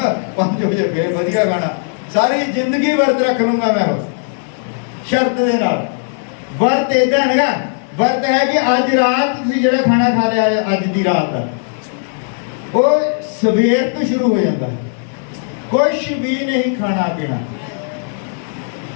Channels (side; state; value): right; silent; 64 dB below the other